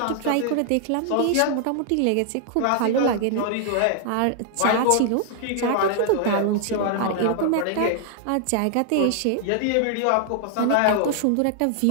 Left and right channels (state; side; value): different; both; correlation 0.00